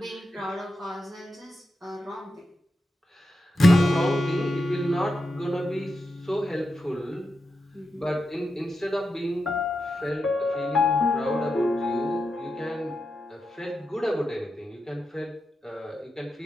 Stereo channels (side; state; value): both; normal; correlation 0.87